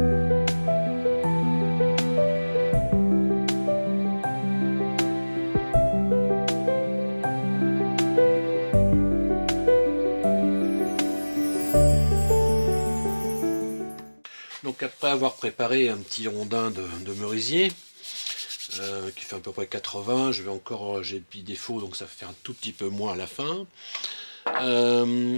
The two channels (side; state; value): both; inverted; correlation -1.00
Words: Donc après avoir préparé un petit rondin de merisier, qui fait à peu près 80, j'ai le petit défaut, donc ça fait un tout petit peu moins à la fin.